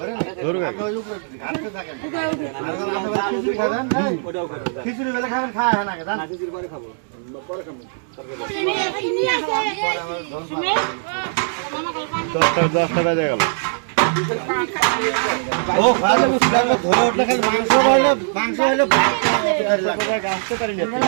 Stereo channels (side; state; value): left; silent; digital silence